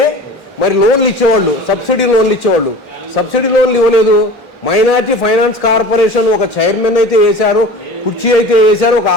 మరి లోన్లు ఇచ్చేవాళ్ళు, సబ్సిడీ లోన్లు ఇచ్చేవాళ్ళు. సబ్సిడీ లోన్లు ఇవ్వలేదు. మైనార్టీ ఫైనాన్స్ కార్పొరేషన్ ఒక చైర్మన్ అయితే వేశారు, కుర్చీ అయితే వేశారు, ఒక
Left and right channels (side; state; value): both; normal; correlation 0.38